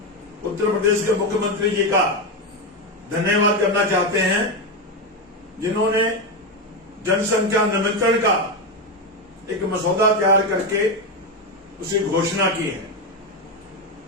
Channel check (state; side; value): normal; both; correlation 0.10